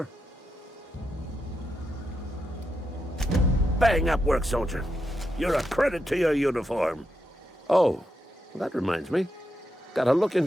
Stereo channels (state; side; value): normal; both; correlation 0.85